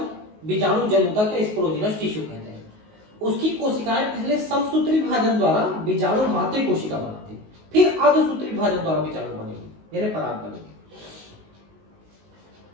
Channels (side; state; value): left; late; 19 ms